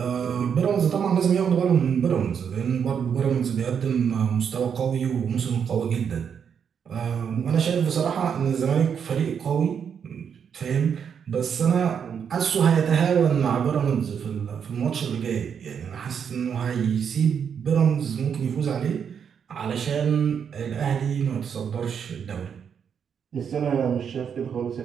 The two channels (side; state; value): left; quieter; 7.4 dB